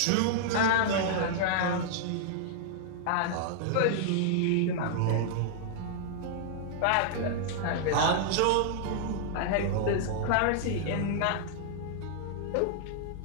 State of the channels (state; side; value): different; both; correlation -0.01